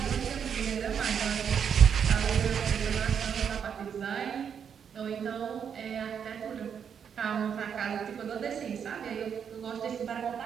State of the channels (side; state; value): left; quieter; 7.6 dB